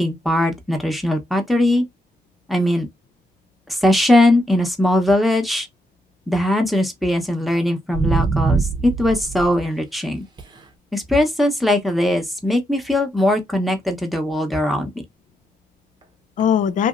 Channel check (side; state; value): both; normal; correlation 0.81